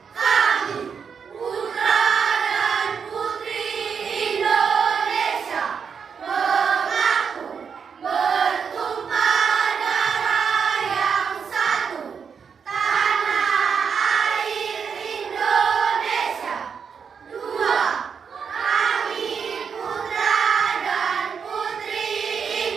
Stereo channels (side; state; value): left; quieter; 6.5 dB